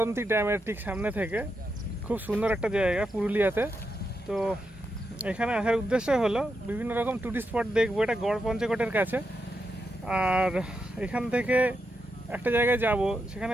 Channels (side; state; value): both; normal; correlation 0.85